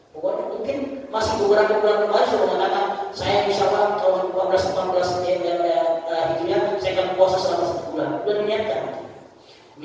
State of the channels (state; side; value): identical; both; correlation 1.00